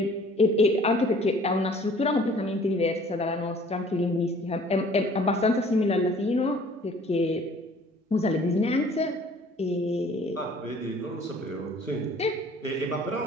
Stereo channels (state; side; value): normal; both; correlation 0.53